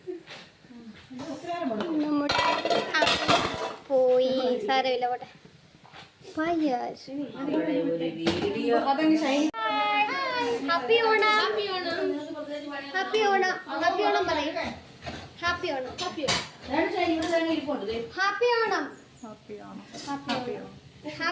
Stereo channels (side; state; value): both; identical; correlation 1.00